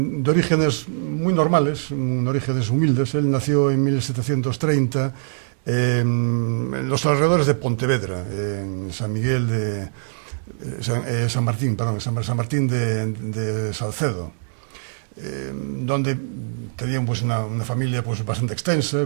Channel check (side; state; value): left; silent; digital silence